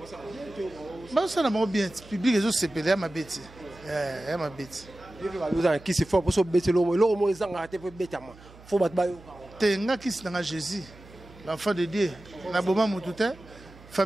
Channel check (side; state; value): right; noise; hum, 22 dB below the sound